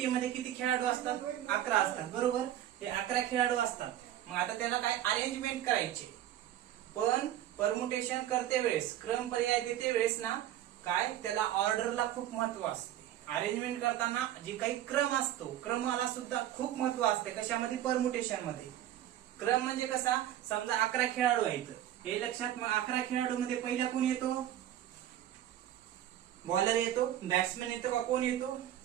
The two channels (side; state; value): left; quieter; 12.1 dB